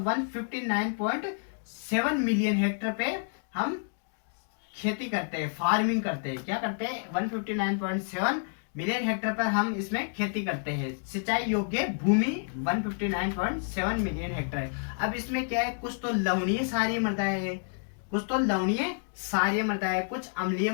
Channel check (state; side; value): silent; right; digital silence